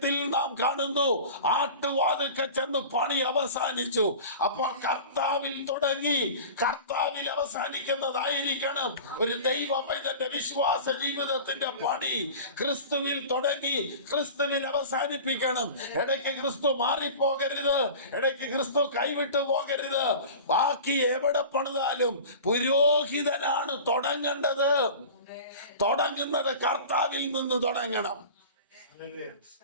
നാം കാണുന്നു, ആട്ടുവാതിൽക്കൽ ചെന്ന് പണി അവസാനിച്ചു. അപ്പോൾ കർത്താവിൽ തുടങ്ങി കർത്താവിൽ അവസാനിക്കുന്നതായിരിക്കണം ഒരു ദൈവ പൈതന്റെ വിശ്വാസ ജീവിതത്തിന്റെ പണി. ക്രിസ്തുവിൽ തുടങ്ങി ക്രിസ്തുവിൽ അവസാനിപ്പിക്കണം. ഇടയ്ക്ക് ക്രിസ്തു മാറിപ്പോകരുത്, ഇടയ്ക്ക് ക്രിസ്തു കൈവിട്ടു പോകരുത്. ബാക്കി എവിടെ പണിതാലും പുരോഹിതനാണ് തുടങ്ങേണ്ടത്. തുടങ്ങുന്നത് കർത്താവിൽ നിന്ന് തുടങ്ങണം.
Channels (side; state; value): both; inverted; correlation -0.37